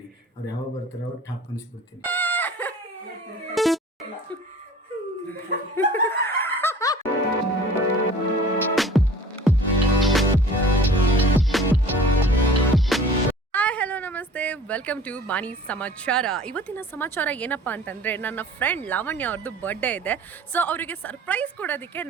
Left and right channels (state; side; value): normal; both; correlation 0.46